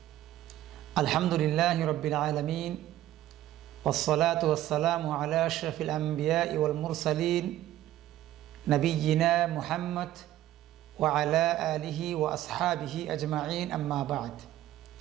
আলহামদুলিল্লাহি রাব্বিল আলামিন ওয়াসসালাতু ওয়াসসালামু আলা আশরাফিল আমবিয়াই ওয়াল মুরসালিন নবিয়িনা মুহাম্মদ ওয়া আলা আলিহি ওয়া আসহাবিহি আজমাইন, আম্মা বা'দ।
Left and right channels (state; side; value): quieter; left; 13.7 dB